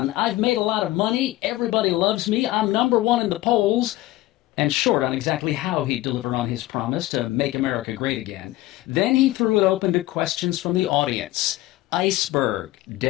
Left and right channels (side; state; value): right; quieter; 17.0 dB